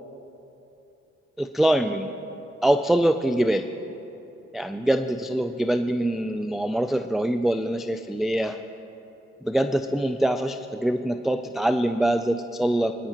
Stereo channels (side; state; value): both; normal; correlation 0.92